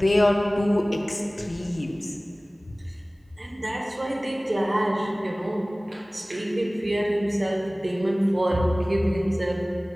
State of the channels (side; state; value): both; normal; correlation 0.98